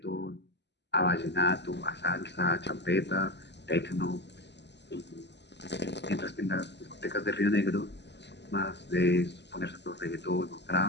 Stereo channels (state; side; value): late; right; 0.50 ms